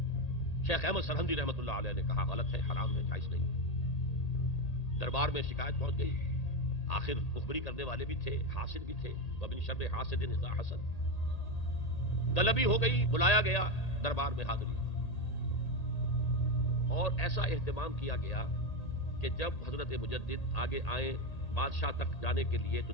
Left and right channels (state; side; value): late; right; 1.8 ms